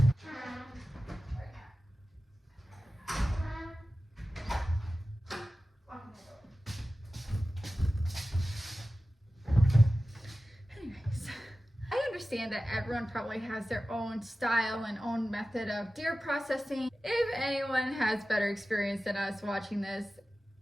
Anyways, I understand that everyone probably has their own style and own method of deer processing. If anyone has better experience than us watching this,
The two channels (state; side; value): normal; both; correlation 0.95